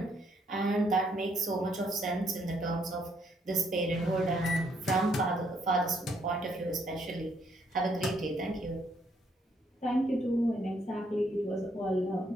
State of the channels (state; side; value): normal; both; correlation 0.71